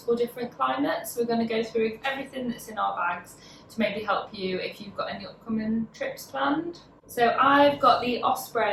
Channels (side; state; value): both; identical; correlation 1.00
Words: different climates. We're going to go through everything that's in our bags to maybe help you if you've got any upcoming trips planned. So I've got the